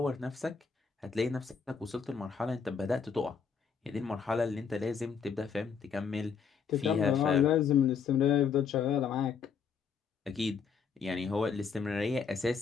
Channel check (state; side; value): quieter; right; 6.2 dB